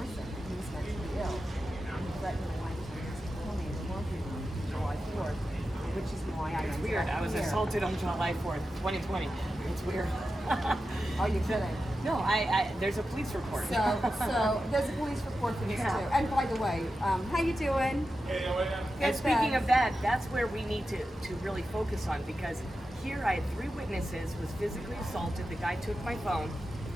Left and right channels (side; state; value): both; normal; correlation 0.91